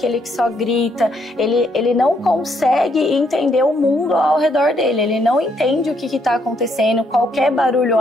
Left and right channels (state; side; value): normal; both; correlation 0.73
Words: que só grita, ele não consegue entender o mundo ao redor dele, ele não entende o que está acontecendo, qualquer barulho